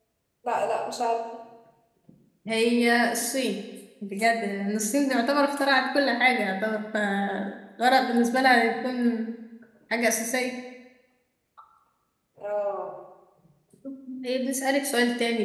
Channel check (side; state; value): both; identical; correlation 1.00